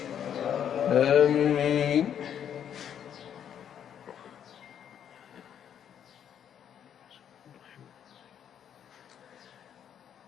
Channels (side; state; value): right; quieter; 9.1 dB